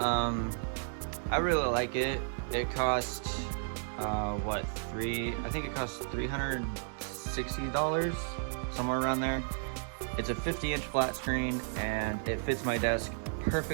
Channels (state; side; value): silent; left; digital silence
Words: really like it. It cost I think it cost $360, somewhere around there. It's a 50-inch flat screen, and it fits my desk